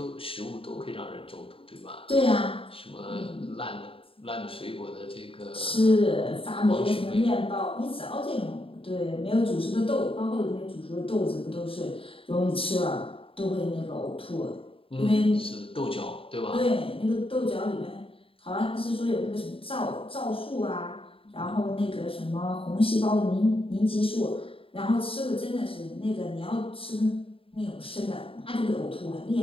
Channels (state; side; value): late; right; 0.27 ms